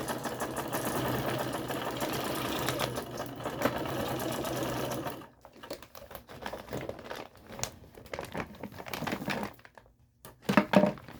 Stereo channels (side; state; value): both; identical; correlation 1.00